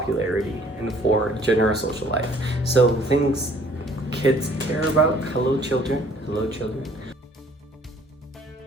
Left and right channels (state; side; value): normal; both; correlation 0.58